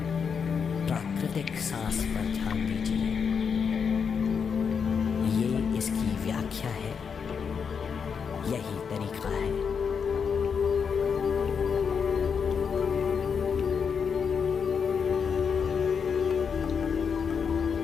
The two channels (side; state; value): right; quieter; 6.4 dB